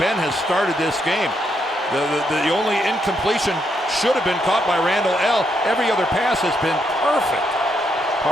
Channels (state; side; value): normal; both; correlation 0.77